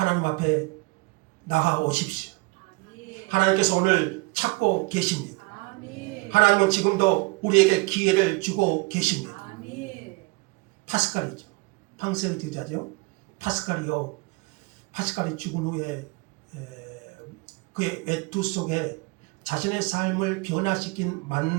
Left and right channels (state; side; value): quieter; left; 26.2 dB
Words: 앞에 나아오십시오. 하나님께서 오늘 찾고 계십니다. 하나님은 지금도 우리에게 기회를 주고 계십니다. 파스칼이죠. 팡세의 제자죠. 파스칼이 죽은 후에 그의 외투 속에 자신의 삶을 변화시킨